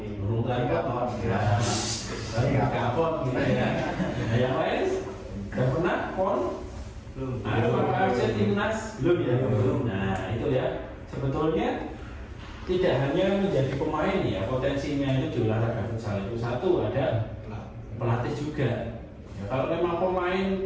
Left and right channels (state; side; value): identical; both; correlation 1.00